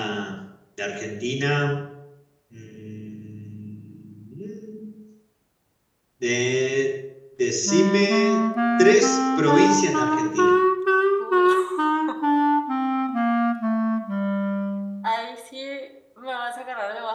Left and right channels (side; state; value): both; identical; correlation 1.00